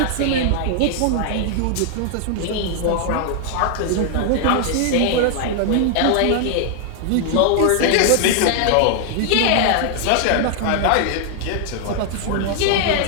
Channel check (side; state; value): both; different; correlation 0.00